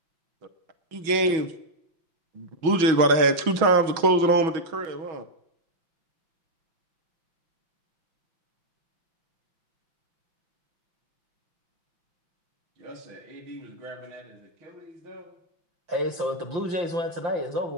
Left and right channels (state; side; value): late; left; 6.2 ms